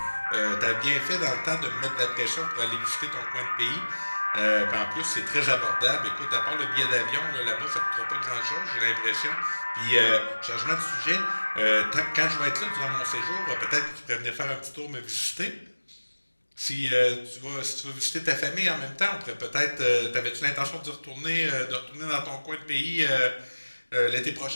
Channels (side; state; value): both; inverted; correlation -1.00